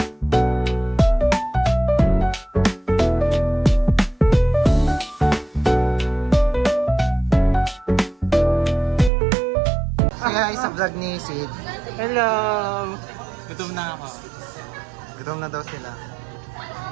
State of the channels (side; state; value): left; drops out; at 9.1 s